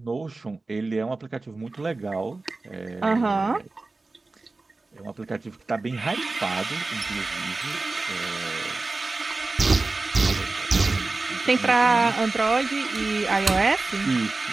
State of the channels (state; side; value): quieter; left; 3.4 dB